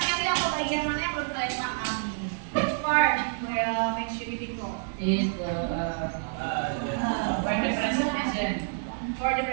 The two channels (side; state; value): left; silent; digital silence